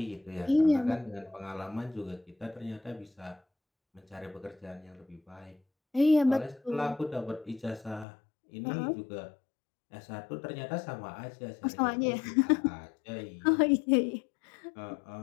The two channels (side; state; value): right; drops out; at 8.1 s